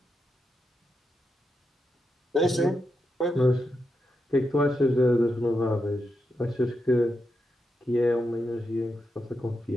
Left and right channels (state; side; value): normal; both; correlation 0.85